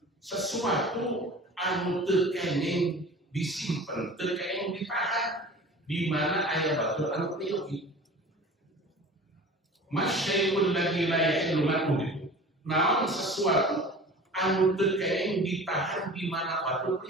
sesuatu anu teu kenging disimpen, teu kenging ditahan di mana aya batur anu priyogi. Masyai'ul ladzi la yahillu man'uhu. Naon sesuatu anu teu kenging ditahan di mana batur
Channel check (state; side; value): normal; both; correlation 0.40